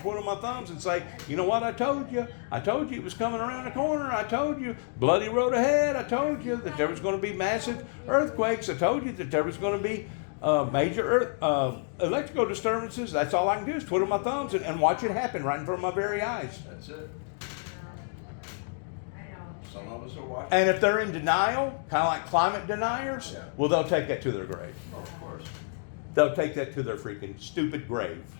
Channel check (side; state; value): right; silent; 59 dB below the other